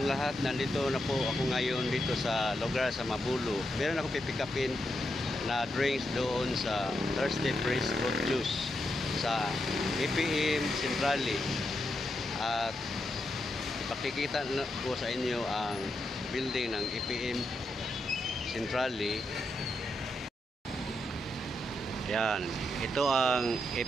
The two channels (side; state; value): both; normal; correlation 0.84